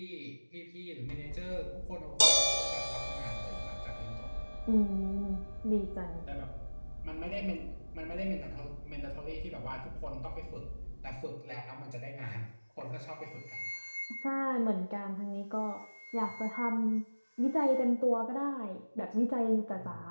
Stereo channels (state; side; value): inverted; both; correlation -1.00